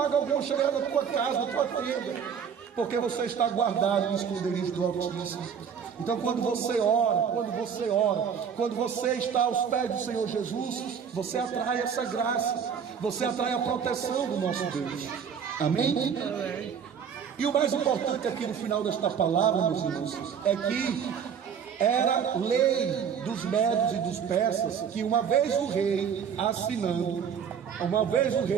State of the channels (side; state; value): left; quieter; 7.3 dB